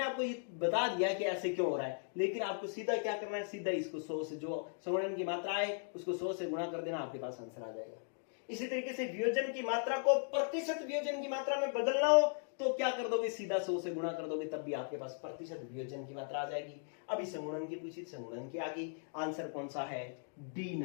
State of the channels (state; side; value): silent; right; digital silence